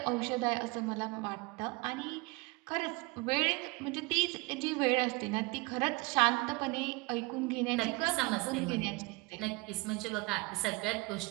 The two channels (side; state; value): left; quieter; 25.8 dB